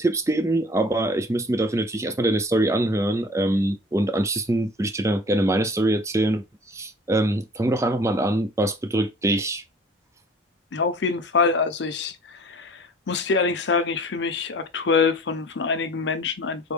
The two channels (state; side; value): normal; both; correlation 0.48